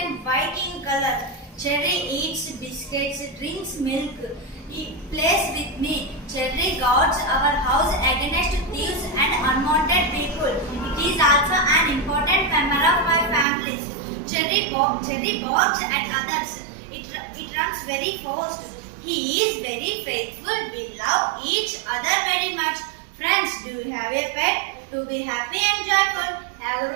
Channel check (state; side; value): drops out; left; at 13.5 s